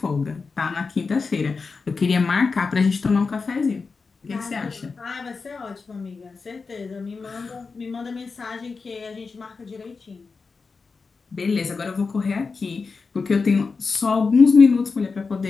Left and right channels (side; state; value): right; quieter; 4.6 dB